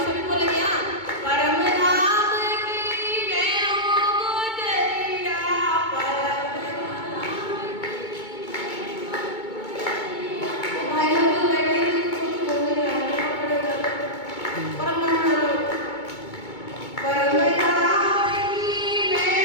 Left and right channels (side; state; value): right; late; 2.2 ms